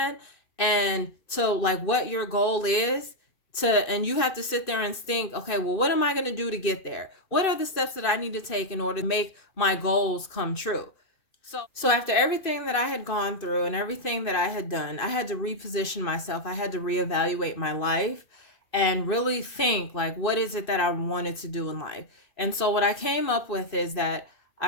and to like what your goal is, and you have to sit there and think, okay, well, what am I going to do to get there? What are the steps that I need to take in order to make my goals come true? So after everything that I had gone through and everything that I had done, I had to reposition myself. I had to reevaluate my life and really think, like, what is it that I wanted to do in life? And so what I came up with is that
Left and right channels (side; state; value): right; late; 2.6 ms